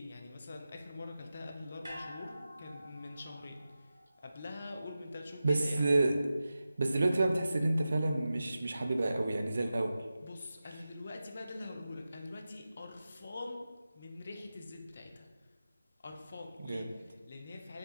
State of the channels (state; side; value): inverted; both; correlation -0.93